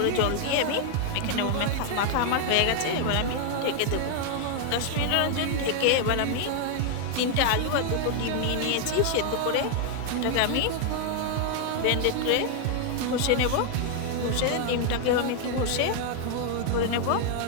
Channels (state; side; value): different; both; correlation 0.00